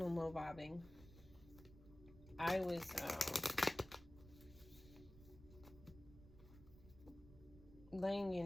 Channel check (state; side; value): noise; right; rumble, 19 dB below the sound